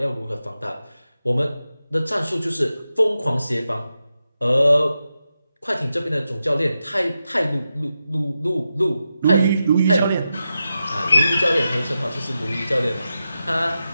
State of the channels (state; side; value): inverted; both; correlation -0.89